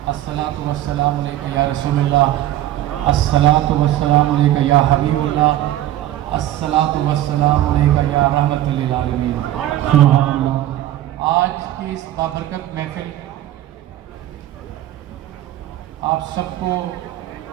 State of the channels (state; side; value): quieter; left; 13.6 dB